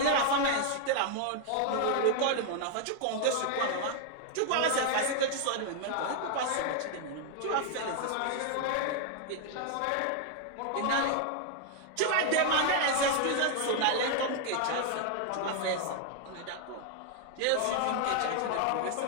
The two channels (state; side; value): different; both; correlation 0.00